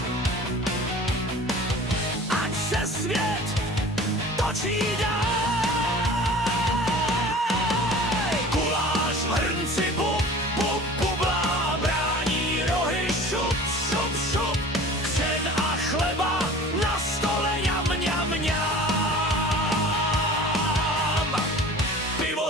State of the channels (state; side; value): normal; both; correlation 0.42